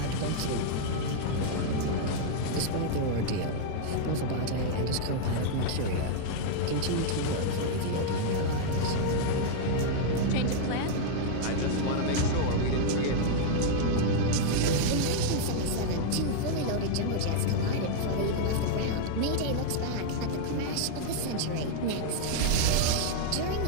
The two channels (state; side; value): different; both; correlation -0.01